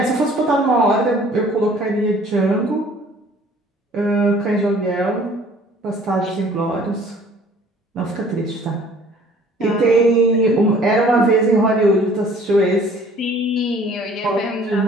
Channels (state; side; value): normal; both; correlation 0.54